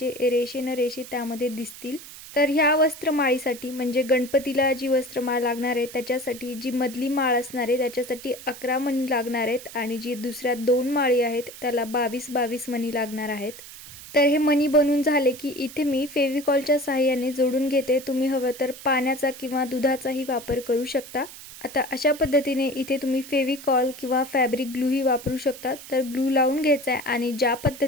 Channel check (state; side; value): noise; right; hiss, 15 dB below the sound